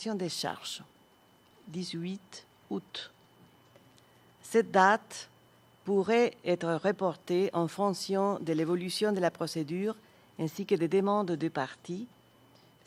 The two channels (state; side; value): identical; both; correlation 1.00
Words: des charges. 18 août. Cette date pourrait être reporté en fonction de l'évolution de la procédure ainsi que des demandes de parties.